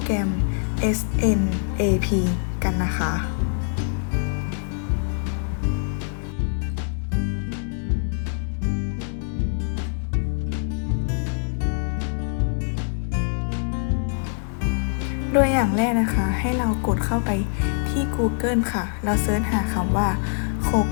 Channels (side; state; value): right; silent; 62 dB below the other